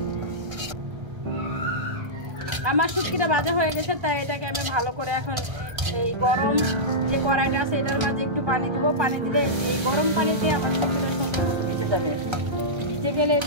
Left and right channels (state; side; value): late; left; 1.3 ms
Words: আমার শুটকিটা ভাজা হয়ে গেছে, তাই এটাকে আমি ভালো করে এখন এই গরম যে কড়াইটা আছে এটার মাঝে একটু পানি দিব। পানি দিলে এই গরম পানিতে আমার শুটকিটা সুন্দর মতো ভিজে যাবে। ভিজে গেলে